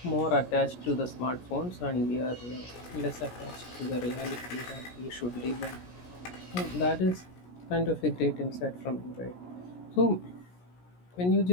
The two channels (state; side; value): late; right; 17 ms